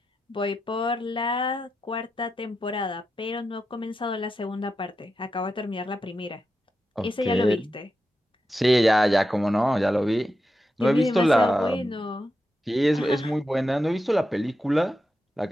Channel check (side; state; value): both; normal; correlation 0.88